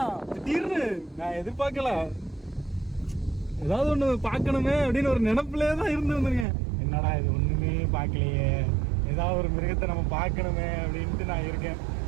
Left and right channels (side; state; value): left; drops out; at 6.5 s